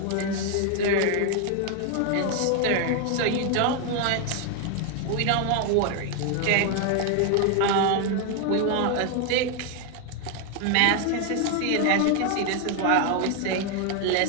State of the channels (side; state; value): both; different; correlation 0.01